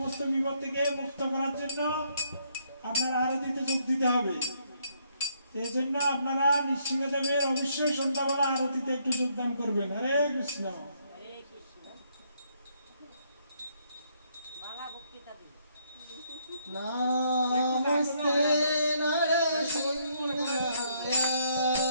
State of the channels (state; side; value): inverted; both; correlation -0.70